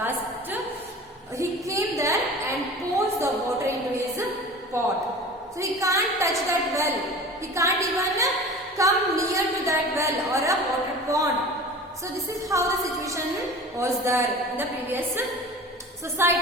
caste, he came there and pours the water into his pot. So he can't touch that well, he can't even come near to that well or a water pond. So this is how the situation was there in the previous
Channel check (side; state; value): both; normal; correlation 0.38